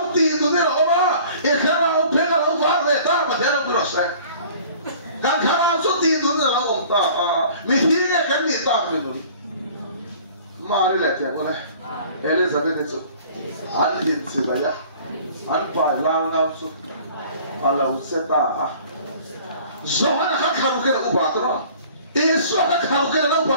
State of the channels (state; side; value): inverted; both; correlation -0.49